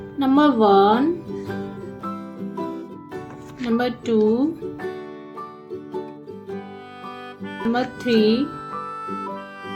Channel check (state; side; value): identical; both; correlation 1.00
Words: number 1, number 2, number 3,